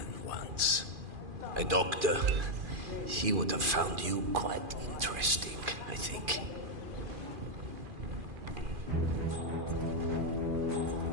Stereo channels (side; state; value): left; late; 2.4 ms